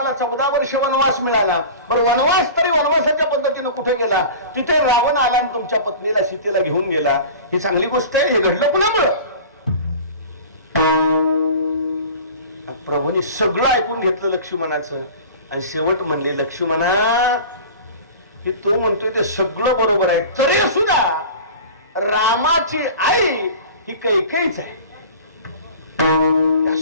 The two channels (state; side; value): inverted; both; correlation -0.37